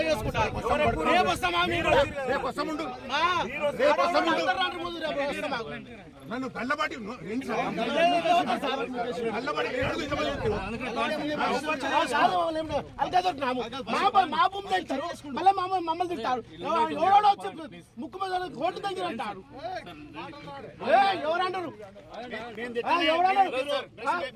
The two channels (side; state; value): both; identical; correlation 1.00